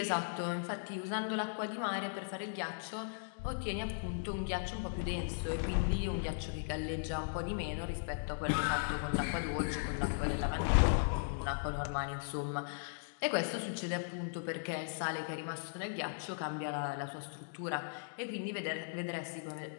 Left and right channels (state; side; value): silent; right; digital silence